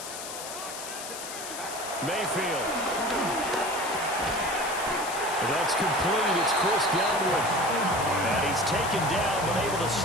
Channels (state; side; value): noise; left; hiss, 9 dB below the sound